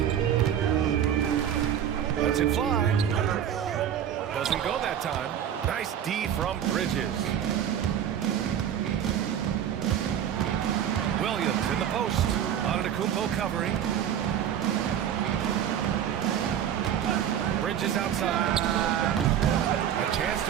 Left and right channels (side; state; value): left; quieter; 9.7 dB